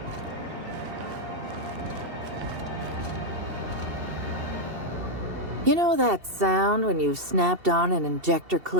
You know that sound when you've snapped on an injector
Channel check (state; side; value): late; left; 2.7 ms